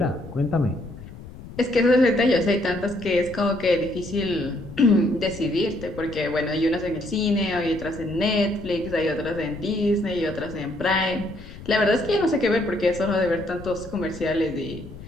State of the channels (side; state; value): left; noise; rumble, 15 dB below the sound